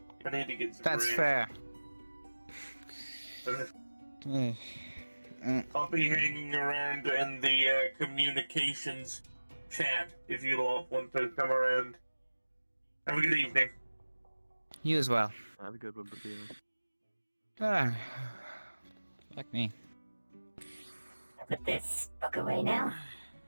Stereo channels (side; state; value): both; inverted; correlation -1.00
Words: I need to get some That's rest. fair. I'll be hanging around in the communications chat if you all want to come around. Have a good evening. You as well. Have a good one, Papino. Ah. Like me. Put this book away now.